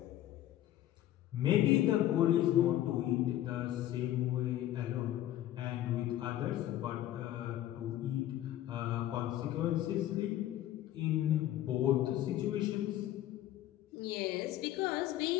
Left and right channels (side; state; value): right; quieter; 13.2 dB